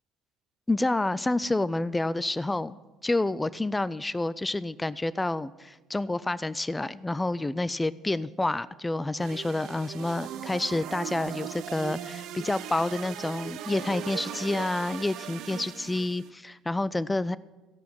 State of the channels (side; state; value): both; normal; correlation 0.95